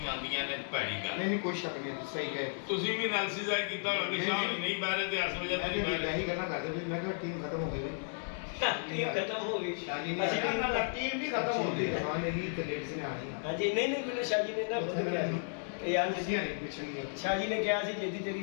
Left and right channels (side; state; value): right; silent; digital silence